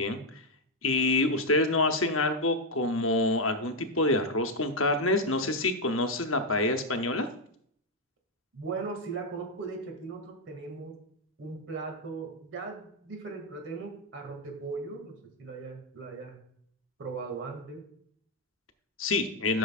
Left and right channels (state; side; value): normal; both; correlation 0.01